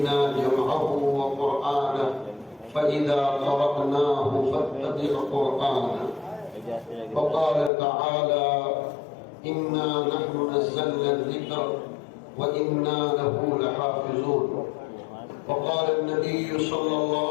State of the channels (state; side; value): drops out; right; at 7.7 s